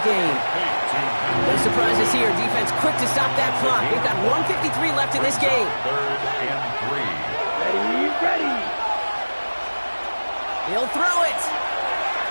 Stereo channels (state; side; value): inverted; both; correlation -1.00